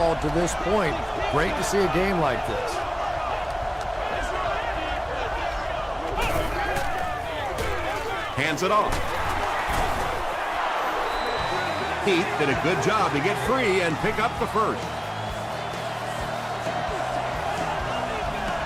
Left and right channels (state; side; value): identical; both; correlation 1.00